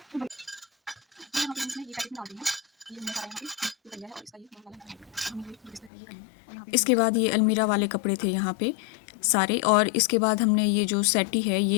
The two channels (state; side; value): drops out; right; at 5.9 s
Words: इसके बाद ये अलमीरा वाले कपड़े थे यहाँ पे सारे, और इसके बाद हमने ये जो सेटी है